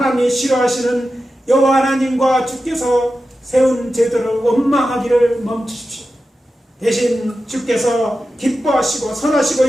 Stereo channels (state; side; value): normal; both; correlation 0.92